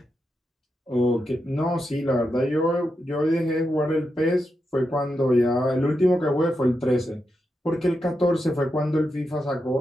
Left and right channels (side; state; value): both; normal; correlation 0.86